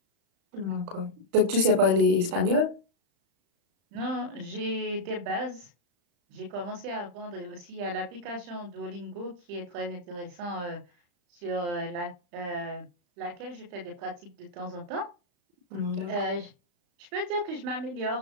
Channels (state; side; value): late; left; 35 ms